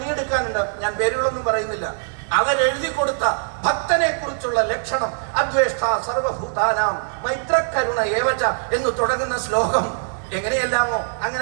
ഞാൻ പേരുകളൊന്നും പറയുന്നില്ല. അവരെഴുതി കൊടുത്ത ഭക്തനെ കുറിച്ചുള്ള ലക്ഷണം, അദ്വേഷ്ട സർവഭൂതാനാം മൈത്രകരുണ ഏവച എന്ന് തുടങ്ങുന്ന ശ്ലോകം എങ്ങനെയെല്ലാമോ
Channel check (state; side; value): silent; left; 64 dB below the other